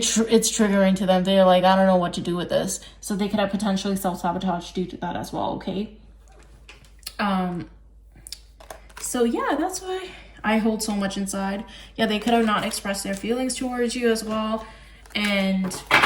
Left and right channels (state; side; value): identical; both; correlation 1.00